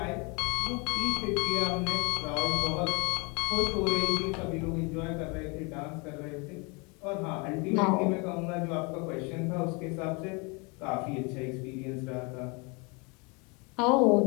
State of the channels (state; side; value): quieter; right; 30.4 dB